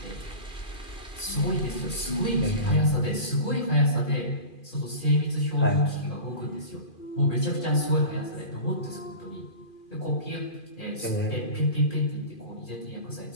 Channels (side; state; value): right; late; 2.4 ms